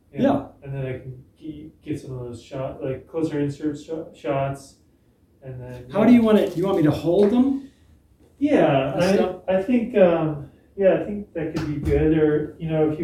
Yeah. And then I can get some of those closer insert shots, and then. How do you want it? Do you want me to hold them? Yeah, Stuff? I think I think that could be good. Or if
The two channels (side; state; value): both; identical; correlation 1.00